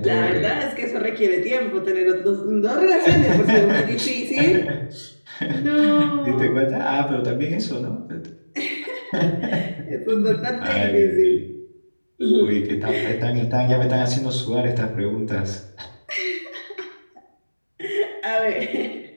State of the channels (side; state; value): both; inverted; correlation -1.00